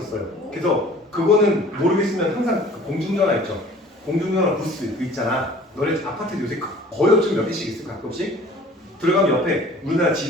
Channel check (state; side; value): normal; both; correlation 0.49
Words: 그래서 그거는 모르겠으면 항상 공중전화 있죠. 공중전화 부스 그 있잖아. 너네 아파트 요새 거의 없지만 몇 개씩 있어 가끔씩. 들어가면 옆에 우리나라